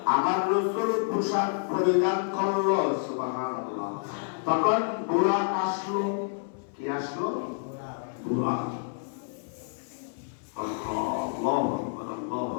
আমার রাসূল পোশাক পরিধান করলো, সুবহানাল্লাহ। তখন বুরাক আসলো। কি আসলো? বুরাক।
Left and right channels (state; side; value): silent; right; 59 dB below the other